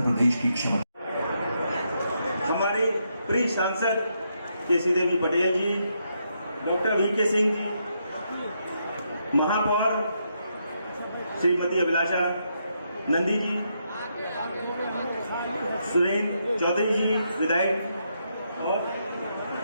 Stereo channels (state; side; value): inverted; both; correlation -0.79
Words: प्रदेश की क्षमता। हमारे प्रिय सांसद केसी देवी पटेल जी, डॉक्टर वीके सिंह जी, महापौर श्रीमती अभिलाषा नंदी जी, सुरेंद्र चौधरी जी विधायक और